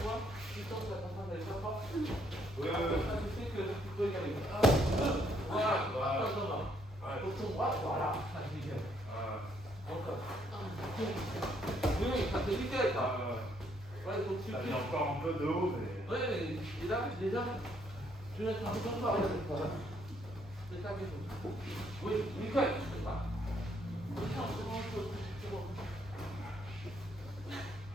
vois, tu sens que la contrainte n'est pas forte. Ouais. Ça, tu sais que tu peux y aller. Voilà, attention, pour ton bras, voilà, ça c'est nickel. Encore. Oui, ça c'est nickel, ça. Ouais, donc tu Ça fais. vient encore un peu de haut, mais. Ouais, et là, déjà, tu laisses un peu comme ça, regarde. C'est ça qu'il faut. Oui, nickel.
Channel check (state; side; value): normal; both; correlation 0.70